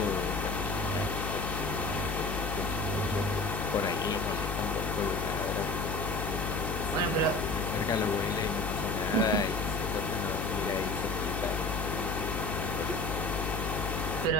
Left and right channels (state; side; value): noise; left; hum, 3 dB below the sound